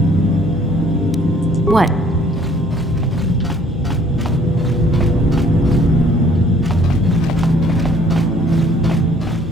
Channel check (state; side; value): normal; both; correlation 0.58